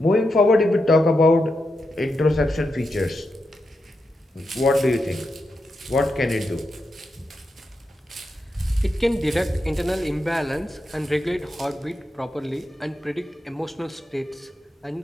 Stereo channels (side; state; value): both; normal; correlation 0.86